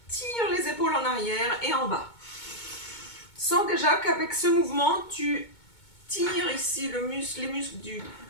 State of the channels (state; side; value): late; right; 2.2 ms